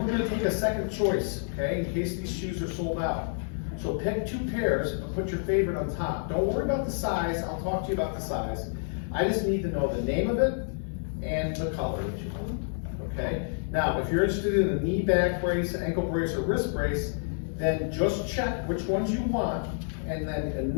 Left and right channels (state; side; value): silent; right; digital silence